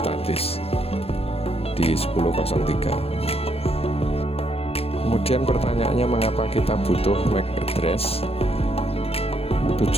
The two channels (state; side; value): late; right; 0.28 ms